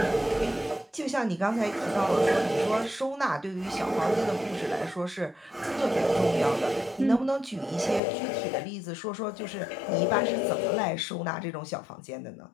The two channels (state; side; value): drops out; right; at 8.0 s